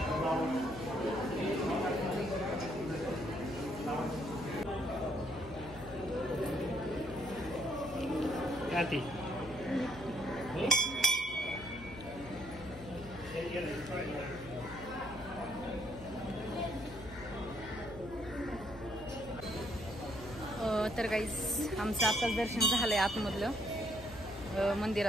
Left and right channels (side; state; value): left; noise; hum, 14 dB below the sound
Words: तर गाईज आमचं आताच दर्शन झालंय आतमधलं